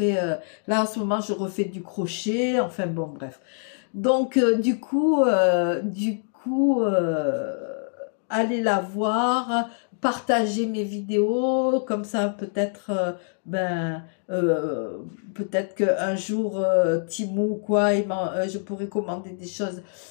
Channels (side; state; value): right; silent; 62 dB below the other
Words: là en ce moment, je refais du crochet. Enfin bon, bref. Donc du coup, allez la voir, partagez mes vidéos, comme ça peut-être peut-être qu'un jour Temu ou quoi, je pourrais commander des choses